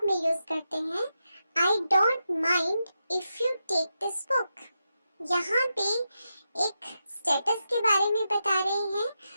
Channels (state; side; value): inverted; both; correlation -0.87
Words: में यूज करते हैं, I don't mind if you take this book. यहाँ पे एक स्टेटस के बारे में बता रहे हैं,